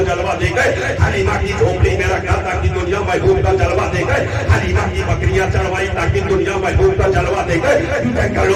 جلوہ دیکھے، حلیمہ کی جھوپڑی میں رکھا تھا کہ دنیا محبوب کا جلوہ دیکھے، حلیمہ کی بکریاں چڑھوائی تاکہ دنیا محبوب کا جلوہ دیکھے،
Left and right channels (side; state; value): both; identical; correlation 1.00